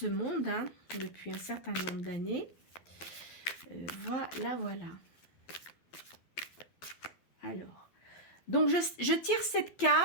monde, hein, depuis un certain nombre d'années. Voilà, voilà. Alors, donc je tire cette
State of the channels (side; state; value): right; late; 12 ms